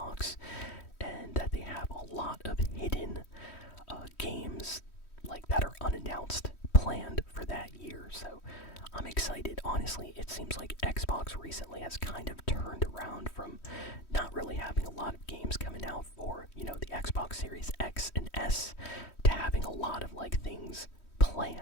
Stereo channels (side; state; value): right; late; 3.1 ms